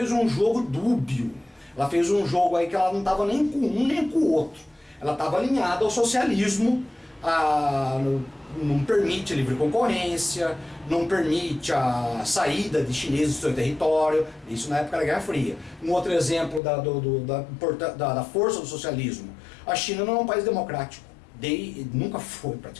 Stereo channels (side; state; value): right; drops out; at 16.6 s